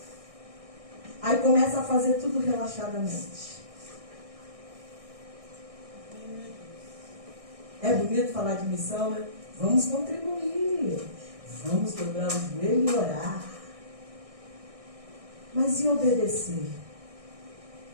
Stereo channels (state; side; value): late; left; 1.6 ms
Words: Aí começa a fazer tudo relaxadamente. É bonito falar de missão, né? Vamos contribuir. Vamos dobrar o joelho e orar. Mas e obedecer?